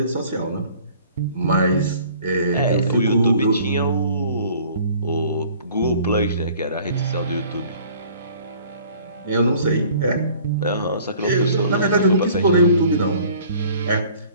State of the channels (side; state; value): both; inverted; correlation -0.52